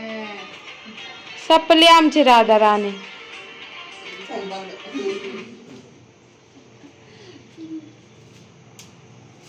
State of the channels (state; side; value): identical; both; correlation 1.00